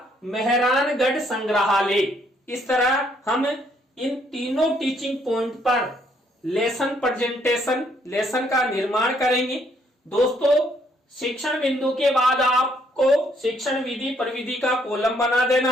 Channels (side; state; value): both; normal; correlation 0.69